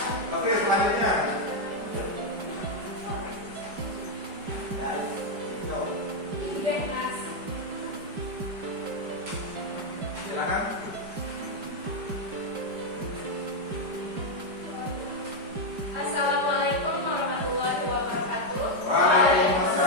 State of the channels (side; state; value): left; late; 5.0 ms